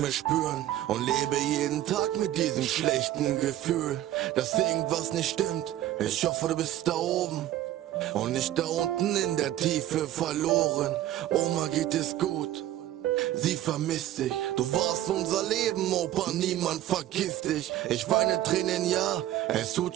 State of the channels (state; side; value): quieter; left; 13.3 dB